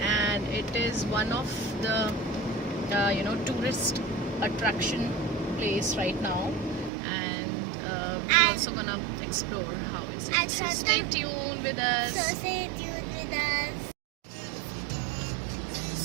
it is one of the tourist attraction place right now, and we're also gonna explore how is it. And So stay tuned with us. So stay tuned with us.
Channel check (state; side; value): drops out; left; at 6.9 s